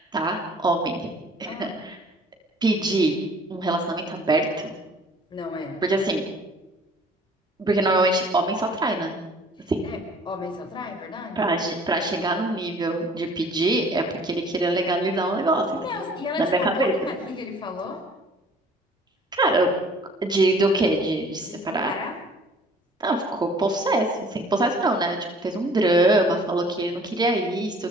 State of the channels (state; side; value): normal; both; correlation 0.52